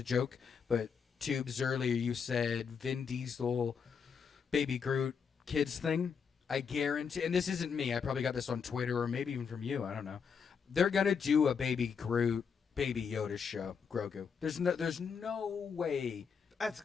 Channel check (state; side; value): quieter; right; 6.3 dB